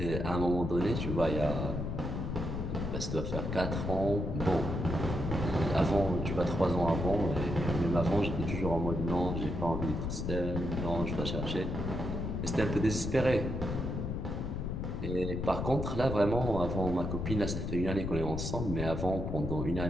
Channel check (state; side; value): noise; left; rumble, 3 dB below the sound